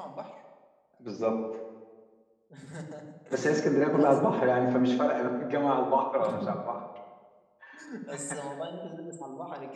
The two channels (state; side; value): identical; both; correlation 1.00